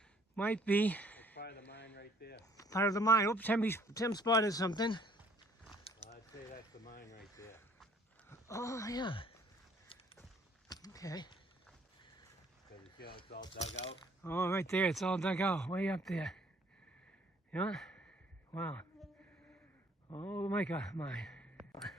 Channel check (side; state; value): both; normal; correlation 0.61